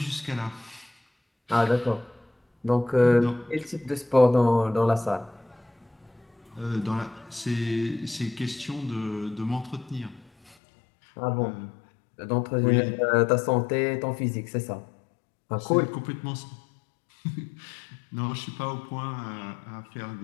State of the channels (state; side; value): drops out; right; at 10.6 s